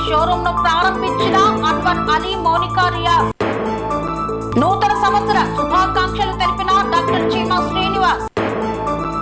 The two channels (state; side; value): identical; both; correlation 1.00